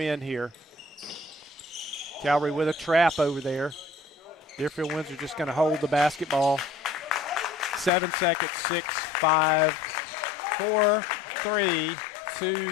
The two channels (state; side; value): drops out; right; at 7.9 s